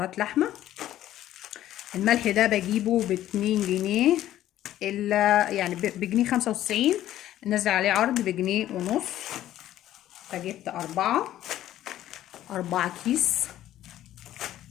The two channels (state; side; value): quieter; right; 13.0 dB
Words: لحمة. الملح ده بجيبه ب2 جنيه يعني بجنيه 95، نزل عليه عرض بجنيه ونص. فجبت 4 كيس.